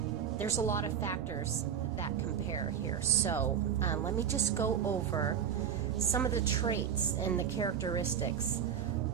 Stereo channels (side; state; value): left; quieter; 8.5 dB